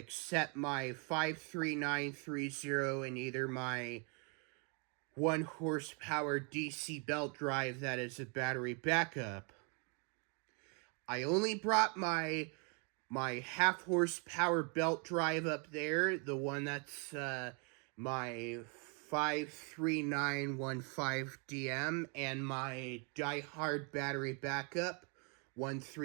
my 53930 and either my 1 horsepower DC belt drive that is a battery backup. I only brought my half horsepower belt drive up there, the one that's my 53915DM, and my diehard battery backup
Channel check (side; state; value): left; quieter; 36.1 dB